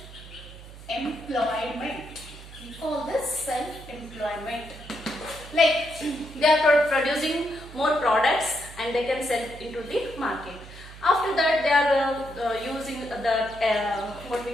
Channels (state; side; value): noise; right; hum, 16 dB below the sound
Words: We call this self-employment. Like they are producing more products and they can sell into the market. After that, they are using the what